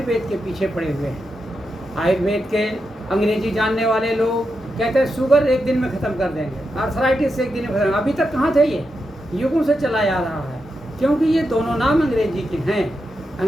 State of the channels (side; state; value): both; normal; correlation 0.86